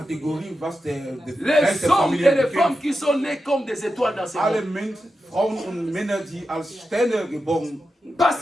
was der Les Geist der hommes Familie et les bekämpft, femmes qui sont nés comme des étoiles dans ce alle monde. Frauen und Männer, die als Sterne geboren Parce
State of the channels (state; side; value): normal; both; correlation 0.90